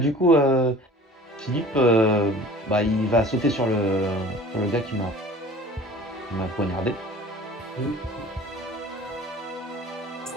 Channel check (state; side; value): normal; both; correlation 0.45